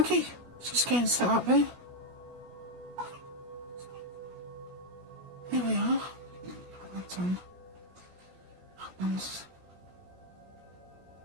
just getting set up here. Here we are. That's on. That one's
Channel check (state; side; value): late; left; 16 ms